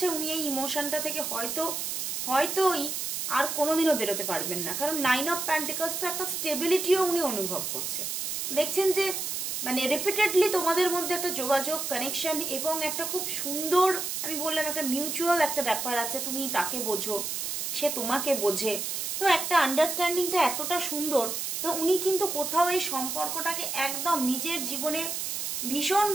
উনি এই ইমোশনটা থেকে হয়তোই আর কোনোদিনও বেরোতে পারবেন না। কারণ 9 অফ পেন্টিকলস তো একটা স্টেবিলিটিও উনি অনুভব করছে। দেখছেন যে মানে রিপিটেডলি তোমাদের মধ্যে একটা যোগাযোগ, কানেকশন, এবং একটা খুব সুন্দর, আমি বললাম একটা মিউচুয়াল একটা ব্যাপার আছে, তুমি তাকে বোঝো, সে তোমাকে বোঝে, তো একটা আন্ডারস্ট্যান্ডিংটা এতটা সুন্দর। তো উনি কিন্তু কোথাও এই সম্পর্কটাকে একদম নিজের জীবনে ভীষণ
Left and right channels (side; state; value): right; noise; hiss, 3 dB below the sound